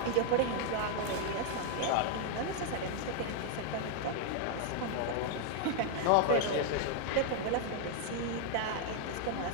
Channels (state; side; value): different; both; correlation 0.00